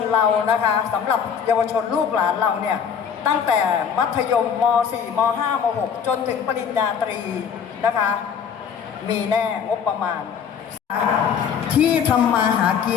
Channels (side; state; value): right; quieter; 7.4 dB